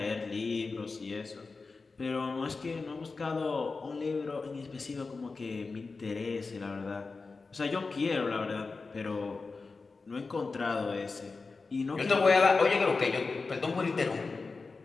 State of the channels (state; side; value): quieter; right; 4.1 dB